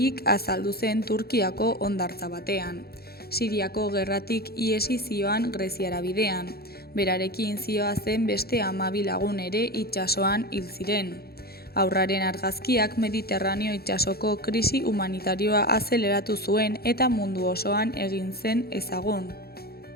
azaldu zen Turkiako hondartza batean. Siriako gerratik ihesi zioan Greziara bidean. Berarekin zihoazen beste 12 lagun ere itsasoan hil ziren. Haurraren argazkiak Mediterraneo itsasoko krisi humanitarioa azeleratu zuen eta mundu osoan egin zen ezagun.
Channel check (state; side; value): late; right; 0.45 ms